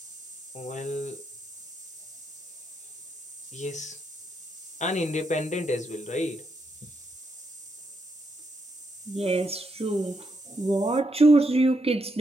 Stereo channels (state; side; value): normal; both; correlation 0.80